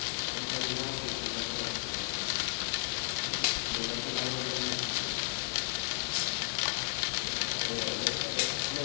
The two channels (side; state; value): right; silent; digital silence